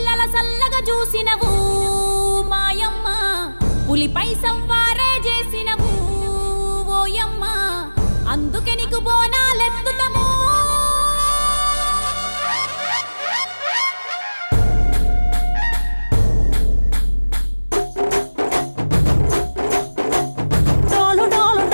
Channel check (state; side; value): inverted; both; correlation -1.00